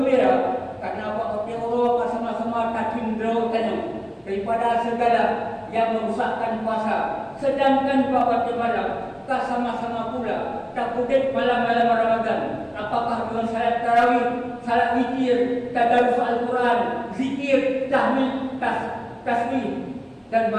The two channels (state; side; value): identical; both; correlation 1.00